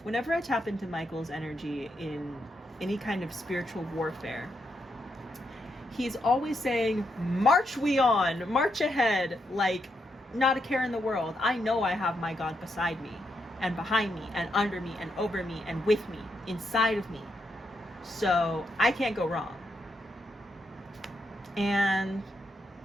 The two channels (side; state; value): both; normal; correlation 0.81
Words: whenever I tap into Michael's energy in any kind of spiritual warfare, he's always saying, march we on, march ahead, like not a care in the world. I know I have my God beside me and behind me and under me and over me and with me, inside of me. So I can't go wrong. And